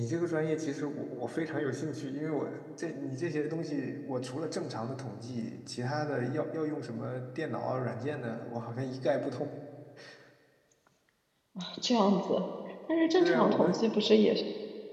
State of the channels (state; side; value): identical; both; correlation 1.00